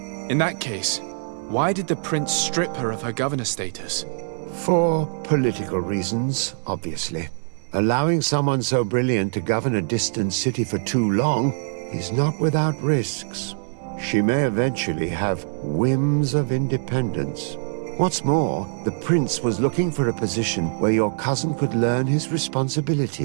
In that case, why did the prince strip her of her governor status? For political reasons, obviously. Allowing someone so brilliant to govern a distant city for too long is not without risks. She may eventually have whims of independence. What's more, the prince was looking for a position where your cousin could learn his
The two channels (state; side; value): silent; left; digital silence